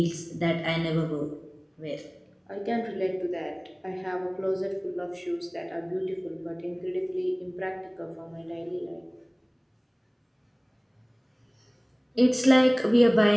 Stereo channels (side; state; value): both; identical; correlation 1.00